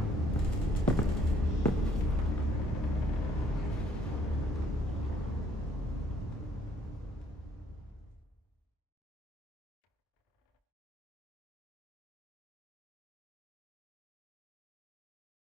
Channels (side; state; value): both; normal; correlation 0.64